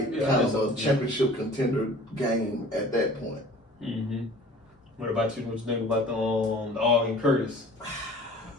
of a championship contender game at that point. What about you? What you think about the Ogden Curtis?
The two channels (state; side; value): normal; both; correlation 0.46